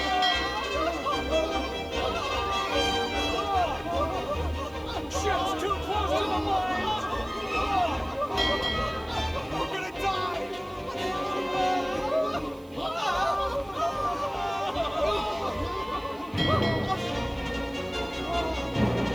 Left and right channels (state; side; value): noise; right; hiss, 27 dB below the sound